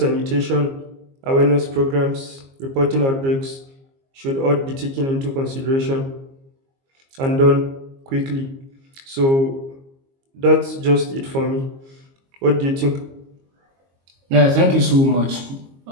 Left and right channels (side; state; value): left; late; 22 ms